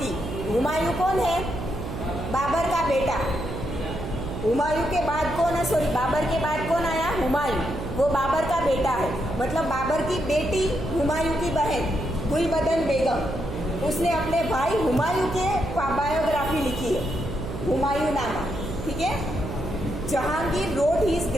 हुमायूं कौन है? बाबर का बेटा। हुमायूं के बाद कौन है? सॉरी, बाबर के बाद कौन आया? हुमायूं। वो बाबर का बेटा है, मतलब बाबर की बेटी हुमायूं की बहन गुलबदन बेगम, उसने अपने भाई हुमायूं के बायोग्राफी लिखी है, हुमायूं नामा। ठीक है, Jahangir wrote his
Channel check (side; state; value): right; noise; hum, 7 dB below the sound